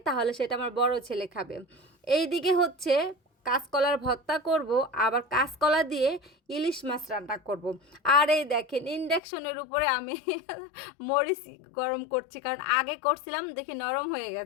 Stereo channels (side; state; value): right; drops out; at 9.2 s